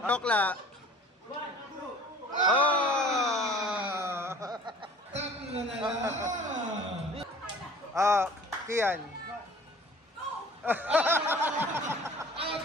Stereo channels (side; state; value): both; normal; correlation 0.47